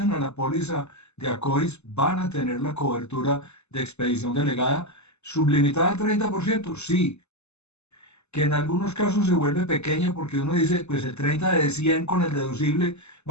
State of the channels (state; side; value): late; right; 0.81 ms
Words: a la póliza de ACOIS van a tener la cobertura de expedición delegada sublimitada al 30%, sí, que en algunos casos se vuelve pequeña porque uno dice, pues el 30 de 100 con el deducible